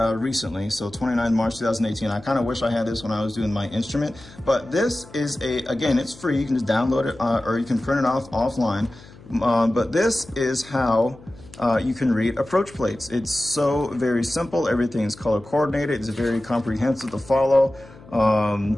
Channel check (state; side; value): noise; left; hum, 21 dB below the sound